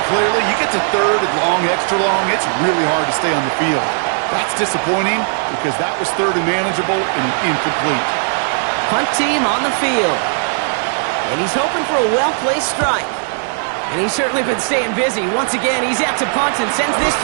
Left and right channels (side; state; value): left; silent; 68 dB below the other